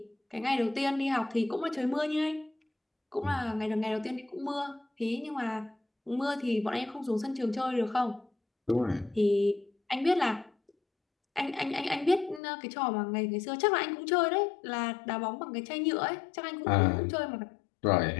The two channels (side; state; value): right; drops out; at 12.4 s